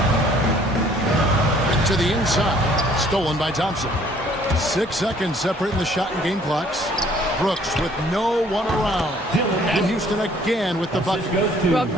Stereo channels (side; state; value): both; normal; correlation 0.59